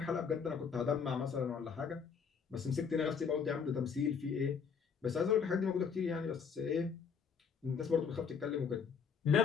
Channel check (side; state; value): right; quieter; 6.4 dB